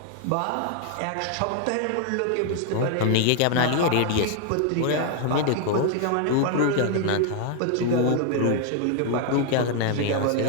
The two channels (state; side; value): different; both; correlation 0.00